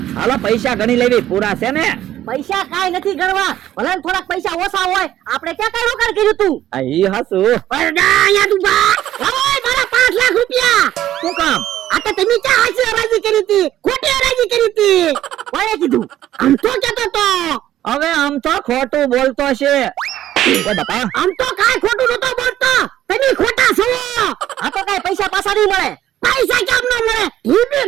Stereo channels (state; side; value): quieter; left; 12.7 dB